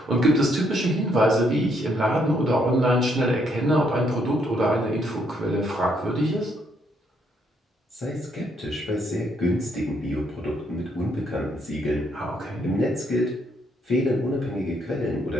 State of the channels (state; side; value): normal; both; correlation 0.73